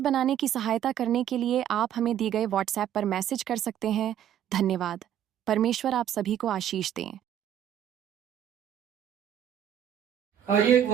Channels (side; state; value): left; quieter; 10.3 dB